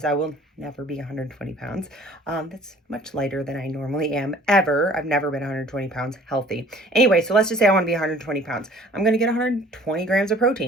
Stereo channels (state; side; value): normal; both; correlation 0.51